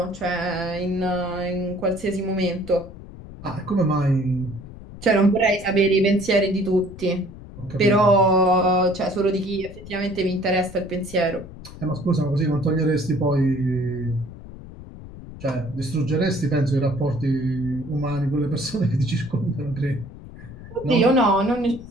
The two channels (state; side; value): noise; left; rumble, 15 dB below the sound